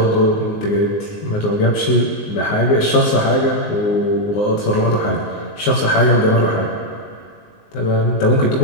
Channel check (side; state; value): right; late; 19 ms